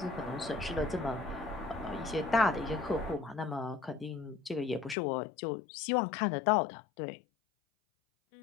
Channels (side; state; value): right; drops out; at 5.0 s